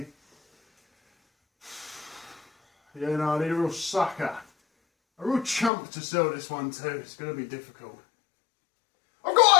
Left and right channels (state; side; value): drops out; right; at 5.7 s